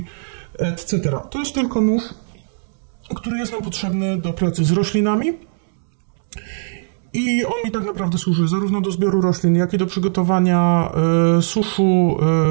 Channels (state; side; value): silent; left; 66 dB below the other